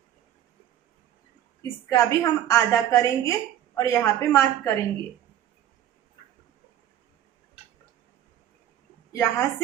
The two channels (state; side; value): quieter; left; 11.4 dB